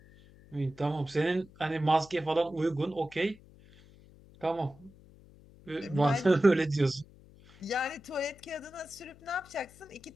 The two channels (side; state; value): left; noise; hum, 24 dB below the sound